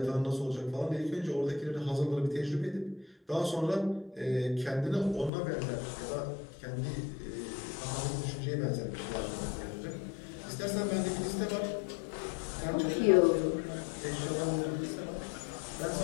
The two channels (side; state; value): right; drops out; at 5.3 s